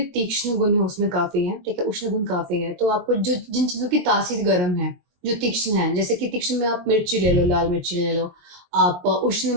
तीक्ष्ण गुण है उसमें काफी है, ठीक है, उष्ण गुण काफी है। तो आपको जो जिन चीजों की तासीर गर्म है, जो तीक्ष्ण है, जैसे कि तीक्ष्ण में आप मिर्ची ले लो, लाल मिर्ची ले लो। आप उष्ण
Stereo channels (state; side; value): late; left; 22 ms